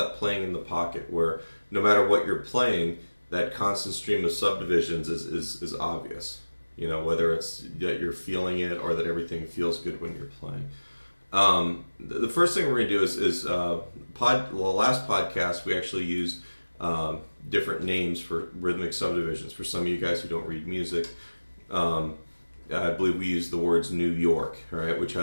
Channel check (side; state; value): both; inverted; correlation -1.00